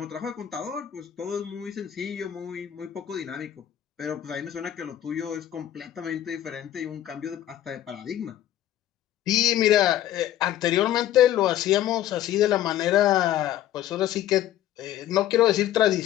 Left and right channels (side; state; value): right; quieter; 12.3 dB